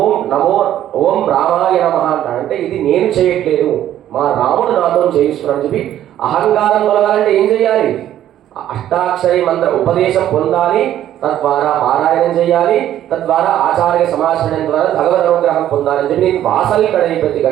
ఓం రామాయ నమః అంటాడు. అంటే ఇది నేను చేయట్లేదు, మా రాముడు నాతో చేయిస్తున్నాడు చెప్పి అహంకారం తొలగాలంటే ఏం చేయాలి? అష్టాక్షరి మంత్ర ఉపదేశం పొందాలి, తద్వారా పారాయణం చేయాలి, తద్వారా ఆచార్య సమాచరణం ద్వారా భగవద్ అనుగ్రహం పొందాలని చెప్పి నేను వాసలి కడైపత్తి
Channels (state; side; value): quieter; left; 11.8 dB